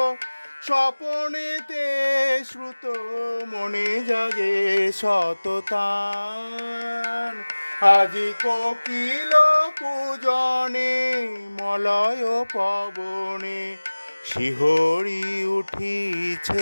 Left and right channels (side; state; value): both; inverted; correlation -1.00